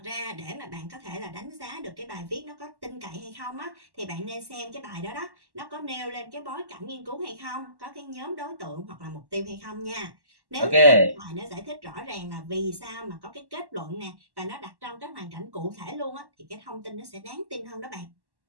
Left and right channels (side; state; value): left; late; 1.1 ms